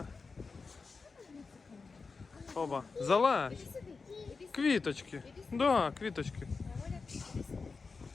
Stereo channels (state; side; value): quieter; right; 4.5 dB